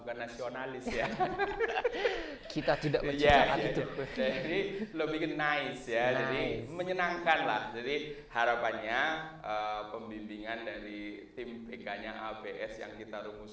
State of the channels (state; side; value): identical; both; correlation 1.00